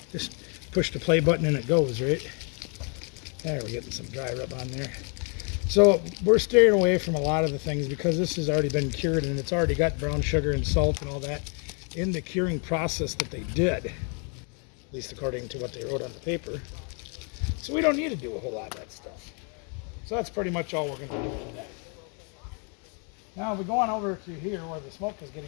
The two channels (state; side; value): quieter; right; 37.8 dB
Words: Just push the play button and it goes, right? There, we're getting some dry rub on there. So we're staying away from a lot of the things because this has already been cured, and it's already got brown sugar and salt and all that in the curing process that they did, at least according to what they wrote on the paper. So we don't need to do a whole lot of that stuff. So that's pretty much all we're going to do today. Now we go on over to here where the smoke is